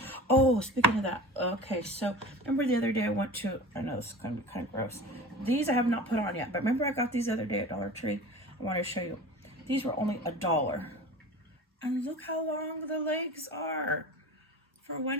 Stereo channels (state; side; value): normal; both; correlation 0.37